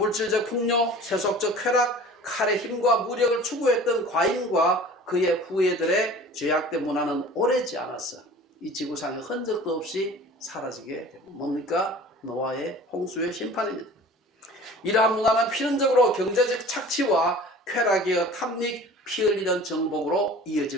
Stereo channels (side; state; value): both; normal; correlation 0.44